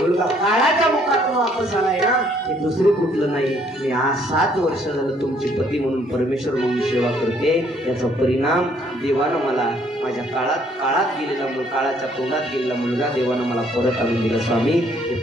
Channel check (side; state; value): both; normal; correlation 0.65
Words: काळाच्या मुखातून वापस आलाय ना, हे दुसरे कुठलं नाही. मी आज 7 वर्ष झालं तुमची पती म्हणून परमेश्वर म्हणून सेवा करते. याचा परिणाम देवानं मला माझ्या काळात गेलेला काळाच्या तोंडात गेलेला मुलगा देवानं मला परत आणून दिला. स्वामी, हे